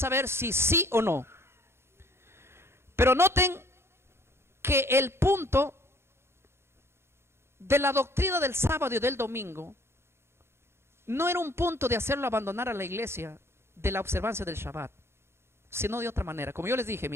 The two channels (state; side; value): late; left; 0.12 ms